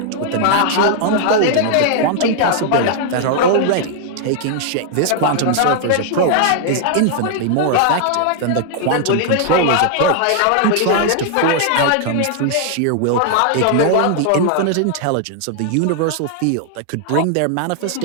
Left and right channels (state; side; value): different; both; correlation 0.00